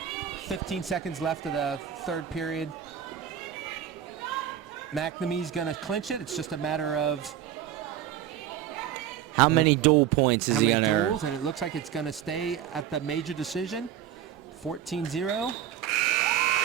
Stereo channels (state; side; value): quieter; left; 10.2 dB